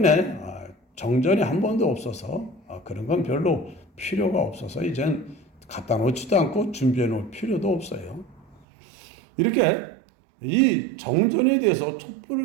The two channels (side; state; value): left; drops out; at 8.7 s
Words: 정전이 한 번도 없어서 그런 건 별로 필요가 없어서 이젠 갖다 놓지도 않고 준비해 놓을 필요도 없어요. 이렇게 이 정전에 대해서